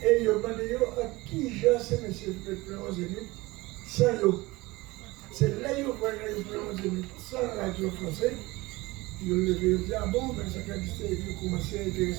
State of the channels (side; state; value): left; quieter; 21.3 dB